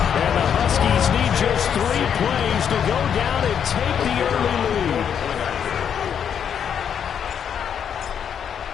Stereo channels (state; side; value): quieter; right; 8.1 dB